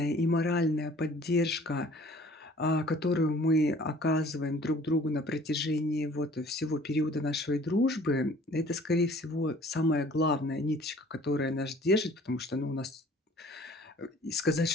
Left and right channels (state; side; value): normal; both; correlation 0.52